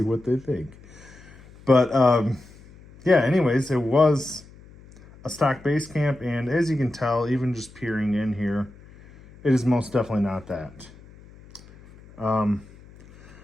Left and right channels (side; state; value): left; noise; hum, 23 dB below the sound